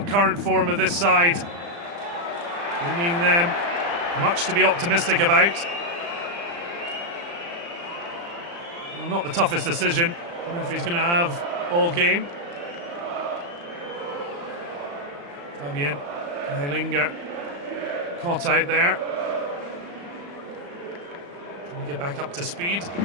current form of this side, bringing them much to be optimistic about. Well, not the toughest decision the referee's going to have all game. Fabian Kreilinger caught out there. Trying to get back up to speed.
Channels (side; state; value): left; late; 35 ms